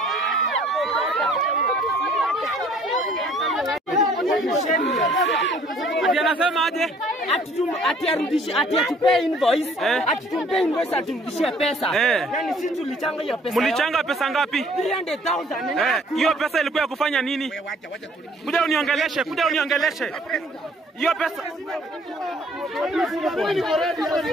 Ati anasema aje? Ati arudishe, ati atupe invoice, ati tumpe invoice aturudishie pesa. Yani sisi tulichanga hiyo pesa. Mlichanga pesa ngapi? 300,000. Hiyo pesa ilikuwa ya kufanya nini? Kuja uniongeleshe, kuja uniongeleshe. Hiyo pesa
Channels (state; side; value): normal; both; correlation 0.58